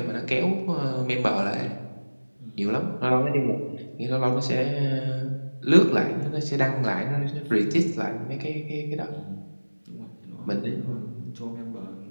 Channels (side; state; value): both; inverted; correlation -1.00